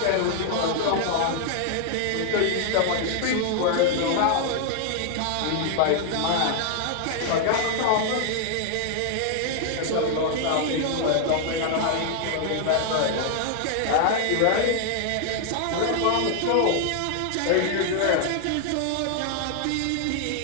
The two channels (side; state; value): both; different; correlation 0.00